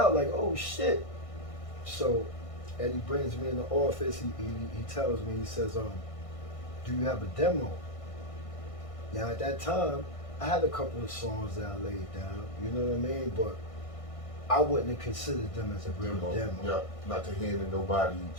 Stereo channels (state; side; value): late; right; 1.6 ms